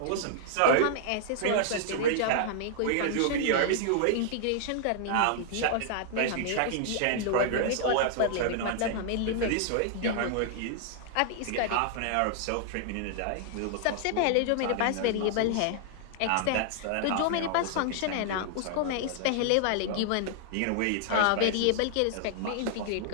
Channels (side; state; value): both; different; correlation -0.01